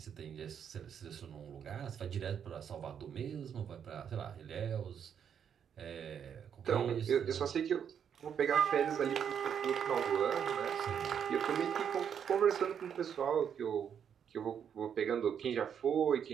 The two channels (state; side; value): quieter; left; 8.1 dB